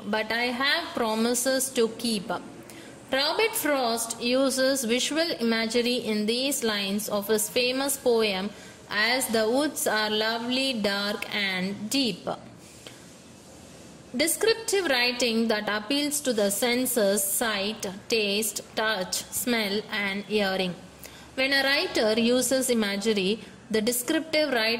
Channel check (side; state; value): both; identical; correlation 1.00